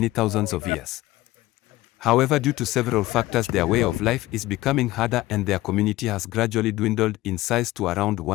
thousands of years. However, due to several factors, their way of life is becoming harder and their community has gradually dwindled in size to around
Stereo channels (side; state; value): right; quieter; 17.5 dB